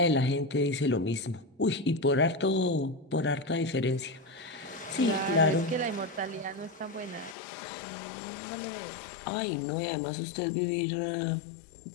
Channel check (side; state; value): right; drops out; at 7.4 s